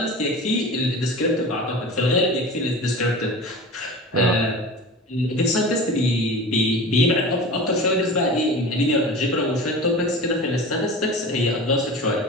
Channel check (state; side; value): normal; both; correlation 0.34